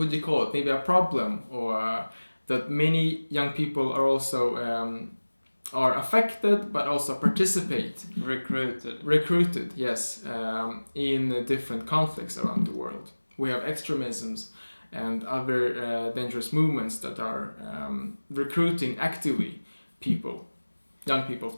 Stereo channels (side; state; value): both; inverted; correlation -1.00